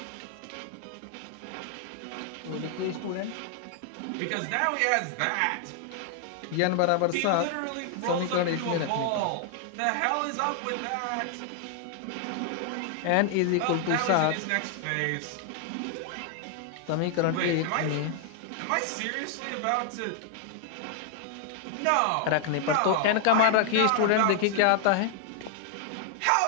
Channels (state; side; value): different; both; correlation 0.00